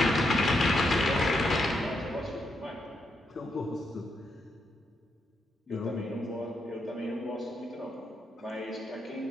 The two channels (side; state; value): both; normal; correlation 0.81